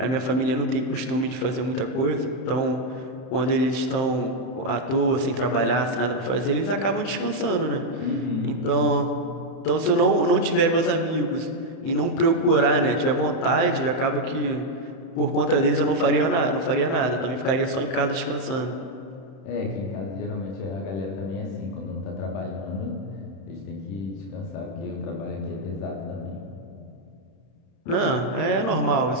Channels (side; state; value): right; late; 31 ms